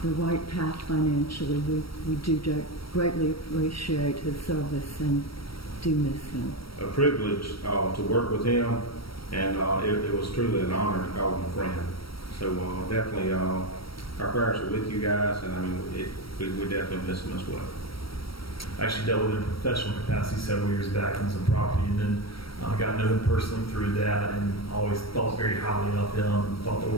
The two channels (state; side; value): late; right; 0.75 ms